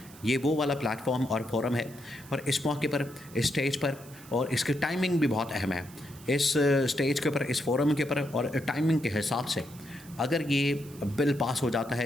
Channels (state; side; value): noise; right; hiss, 21 dB below the sound